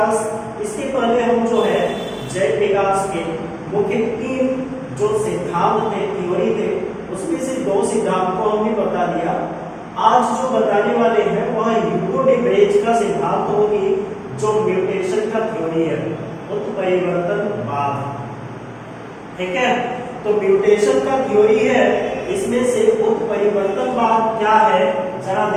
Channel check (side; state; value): both; identical; correlation 1.00